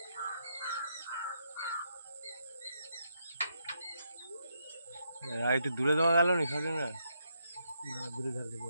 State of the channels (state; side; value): inverted; both; correlation -0.79